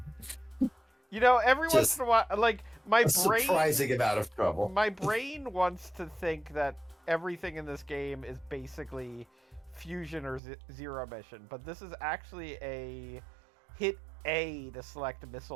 You know, every once Just in a while, like my A brain, surprising amount of trouble. my brain wants to think that everything in this game is basically fusion or zero mission, but this is actually a hit A to select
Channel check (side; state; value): left; drops out; at 10.4 s